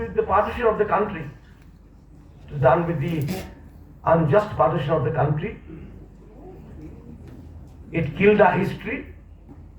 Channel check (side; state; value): both; identical; correlation 1.00